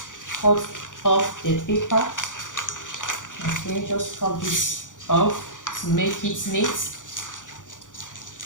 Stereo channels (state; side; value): late; right; 0.87 ms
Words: cut off the paper. Okay, just cut this off to make it neat.